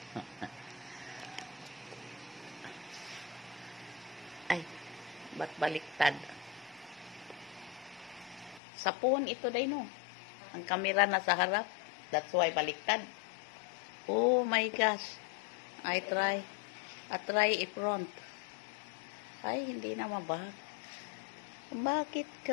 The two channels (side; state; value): right; drops out; at 8.6 s